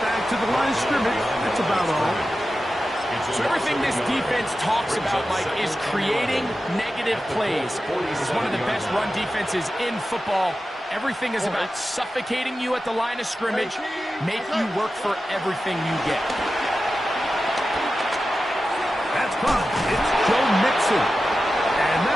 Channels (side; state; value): both; normal; correlation 0.93